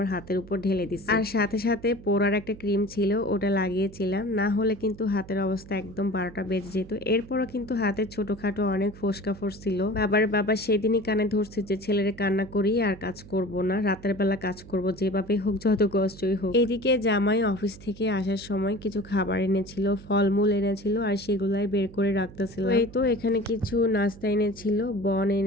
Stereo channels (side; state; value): right; noise; hum, 18 dB below the sound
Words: হাতের উপর ঢেলে দিচ্ছি, আর সাথে সাথে পোড়ার একটা ক্রিম ছিল ওটা লাগিয়েছিলাম, না হলে কিন্তু হাতের অবস্থা একদম 12টা বেজে যেত। এরপরও কিন্তু হাতের ছোটখাটো অনেক ফোসকা ফোসছিল। বাবা সেদিনই কানে ধরছে যে ছেলের কান্না করি আর কাজ করব না, রাতের বেলা কাজ করব, যেভাবে হোক যত কষ্টই হোক। এদিকে জামাই অফিস থেকে আসার সময় কিছু খাবার এনেছিল, ফলমূল এনেছিল, আর সেগুলাই বের করে রাখতেছিল। এই তো এখানে কিছু নাস্তা এনেছিল, বন